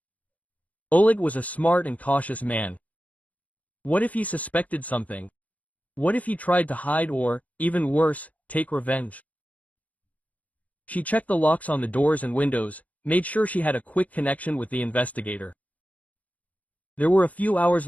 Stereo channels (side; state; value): right; late; 0.071 ms